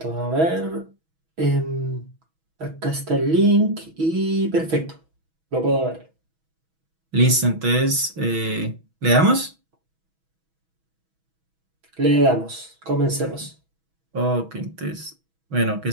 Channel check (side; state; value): left; late; 6.2 ms